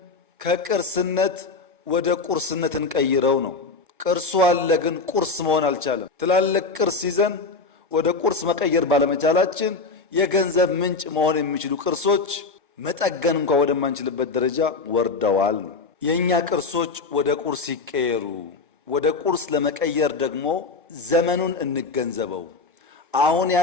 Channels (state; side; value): quieter; right; 4.1 dB